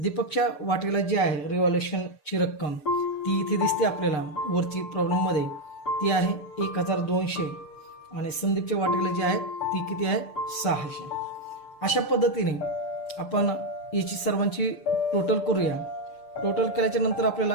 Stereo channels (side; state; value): right; late; 6.7 ms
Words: वाटेला जी आहे रिव्हॅल्युएशनची रक्कम ती इथे दिसते आपल्याला वरची प्रॉब्लेममध्ये, ती आहे 1200 आणि संदीपच्या वाटेला जी आहे ती किती आहे 600. अशा पद्धतीने आपण याची सर्वांची टोटल करूया. टोटल केल्याच्या नंतर आपल्या